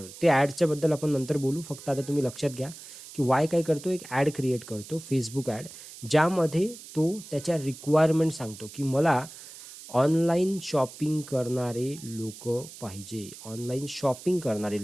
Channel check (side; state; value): right; noise; hiss, 16 dB below the sound